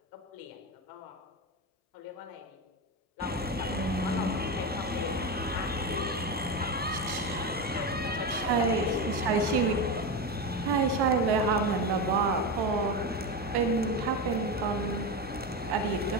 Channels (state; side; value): normal; both; correlation 0.17